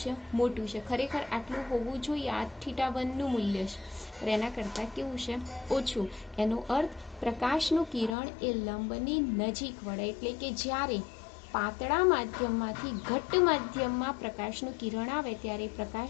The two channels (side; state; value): right; drops out; at 8.2 s